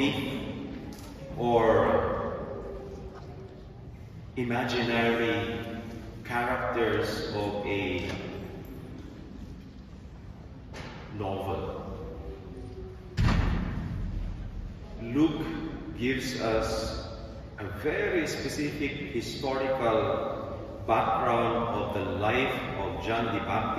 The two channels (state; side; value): identical; both; correlation 1.00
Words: or imaginary characters of a novel. Luke gives us a very specific historical background of the life of John the